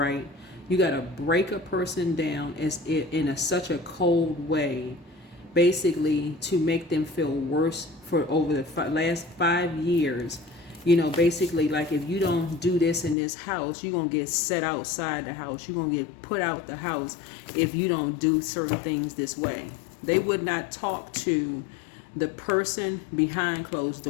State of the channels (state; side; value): drops out; right; at 13.2 s